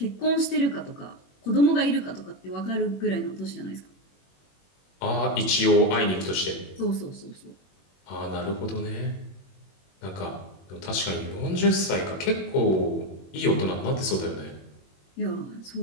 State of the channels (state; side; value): late; right; 21 ms